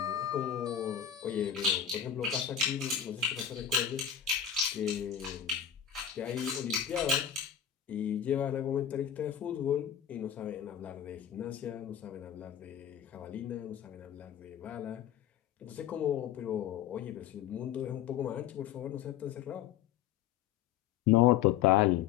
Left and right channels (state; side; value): quieter; right; 9.5 dB